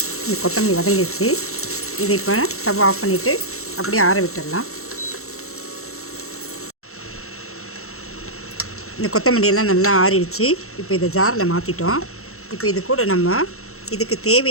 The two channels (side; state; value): right; late; 0.63 ms